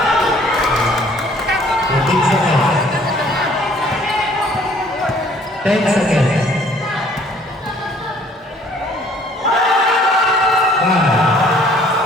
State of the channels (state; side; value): normal; both; correlation 0.58